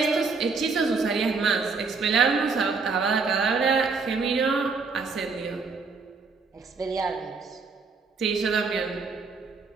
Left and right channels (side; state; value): left; quieter; 4.6 dB